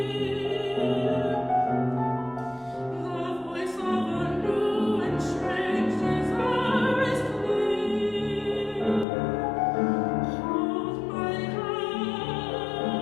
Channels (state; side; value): drops out; right; at 9.1 s